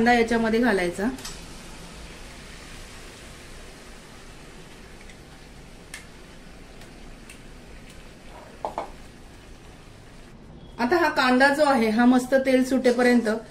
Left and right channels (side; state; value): both; identical; correlation 1.00